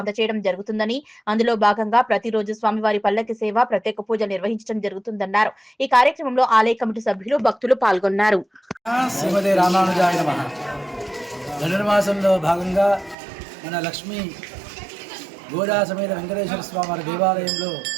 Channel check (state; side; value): drops out; left; at 13.2 s